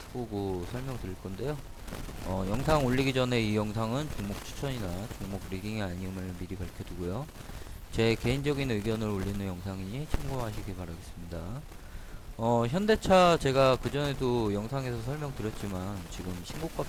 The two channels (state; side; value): identical; both; correlation 1.00